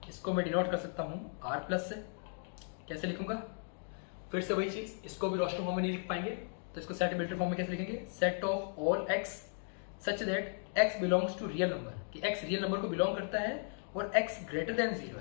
इसको मैं डिनोट कर सकता हूं R प्लस से। कैसे लिखूंगा? फिर से वही चीज, इसको भी रोस्टर फॉर्म में नहीं लिख पाएंगे तो इसको सेट बिल्डर फॉर्म में कैसे लिखेंगे? Set of all x such that x belongs to real number, कि एक्स रियल नंबर को बिलोंग करता है और एक्स ग्रेटर देन 0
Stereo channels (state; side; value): silent; right; 54 dB below the other